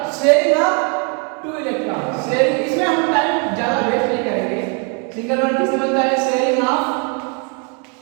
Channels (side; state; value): left; quieter; 36.5 dB